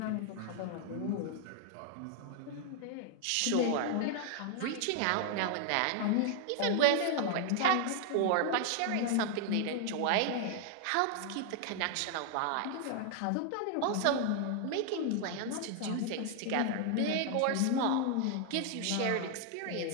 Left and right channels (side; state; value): both; different; correlation 0.00